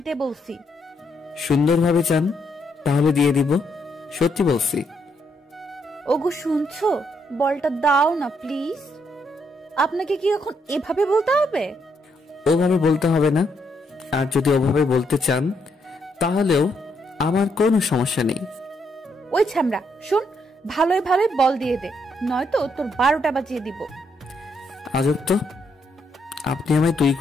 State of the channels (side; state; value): both; normal; correlation 0.76